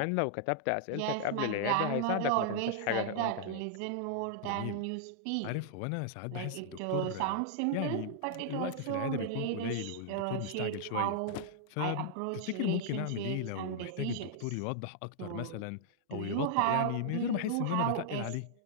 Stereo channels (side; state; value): both; different; correlation -0.01